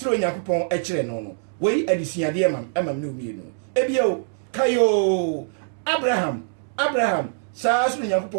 Onyankopɔn ekire no wei adisuade amam ne omienu ebio kayo Abraham saa so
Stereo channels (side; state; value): left; silent; digital silence